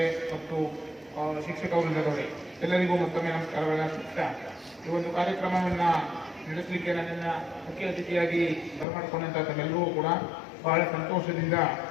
ಮತ್ತು ಶಿಕ್ಷಕ ವೃಂದದವರೇ, ಎಲ್ಲರಿಗೂ ಮತ್ತೊಮ್ಮೆ ನಮಸ್ಕಾರಗಳನ್ನು ಅರ್ಪಿಸ್ತಾ ಈ ಒಂದು ಕಾರ್ಯಕ್ರಮವನ್ನು ನಡೆಸಲಿಕ್ಕೆ ನನ್ನನ್ನು ಮುಖ್ಯ ಅತಿಥಿಯಾಗಿ ಬರಮಾಡಿಕೊಂಡಂಥ ತಮ್ಮೆಲ್ಲರೂ ಕೂಡ ಬಹಳ ಸಂತೋಷದಿಂದ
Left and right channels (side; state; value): right; drops out; at 8.8 s